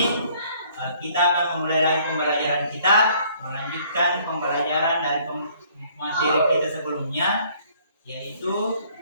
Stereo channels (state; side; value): inverted; both; correlation -0.60